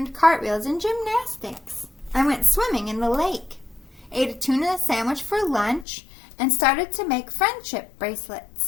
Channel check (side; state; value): right; drops out; at 5.9 s